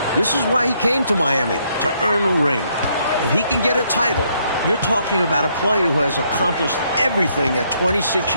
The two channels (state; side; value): inverted; both; correlation -0.72